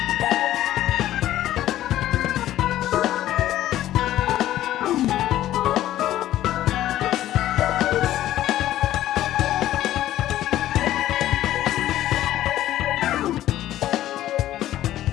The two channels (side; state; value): right; quieter; 13.5 dB